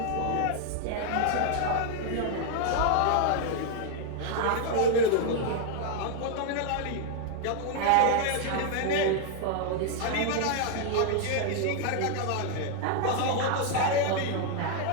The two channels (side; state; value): both; different; correlation 0.00